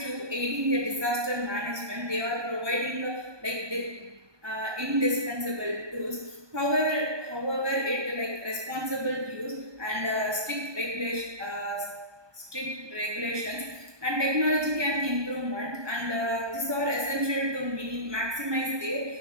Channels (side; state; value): left; late; 1.2 ms